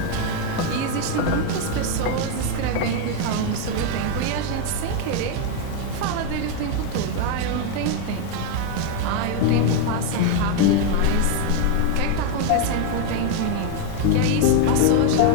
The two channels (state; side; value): different; both; correlation 0.01